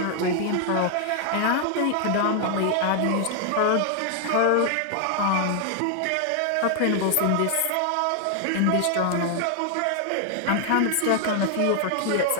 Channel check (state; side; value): different; both; correlation 0.00